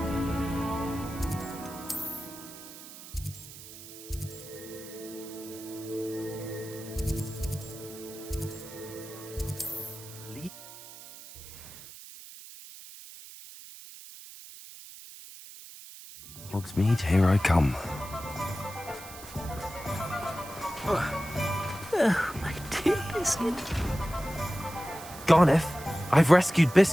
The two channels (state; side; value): noise; right; hiss, 15 dB below the sound